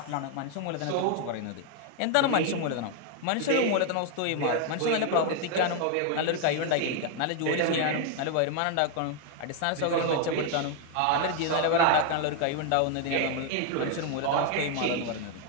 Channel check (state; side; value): different; both; correlation 0.00